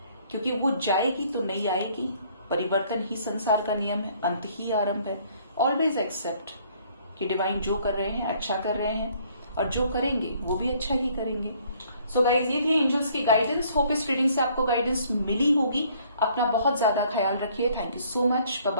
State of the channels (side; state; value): both; inverted; correlation -0.61